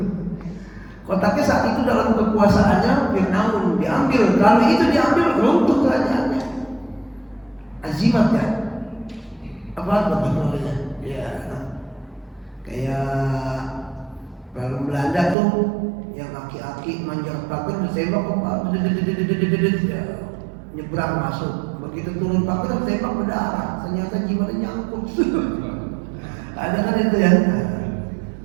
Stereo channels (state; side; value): drops out; left; at 15.4 s